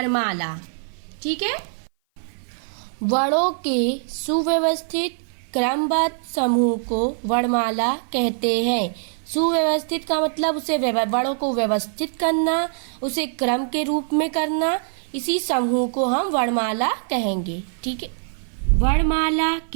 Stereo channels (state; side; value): silent; left; 57 dB below the other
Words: ठीक है। वर्णों के सुव्यवस्थित क्रमबद्ध समूह को वर्णमाला कहते हैं। सुव्यवस्थित का मतलब उसे वर्णों को व्यवस्थित करना, उसे क्रम के रूप में करना, इसी समूह को हम वर्णमाला कहेंगे। ठीक है। वर्णमाला